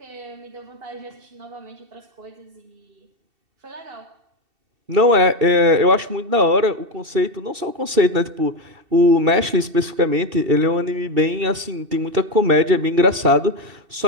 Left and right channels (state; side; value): late; left; 2.7 ms